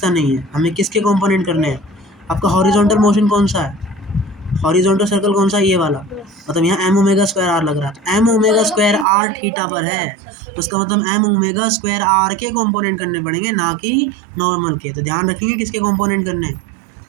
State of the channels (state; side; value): drops out; left; at 9.1 s